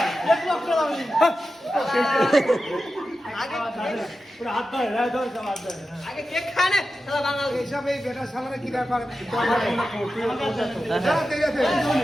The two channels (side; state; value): both; normal; correlation 0.92